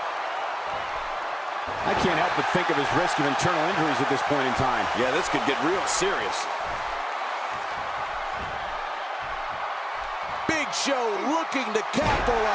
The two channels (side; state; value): both; identical; correlation 1.00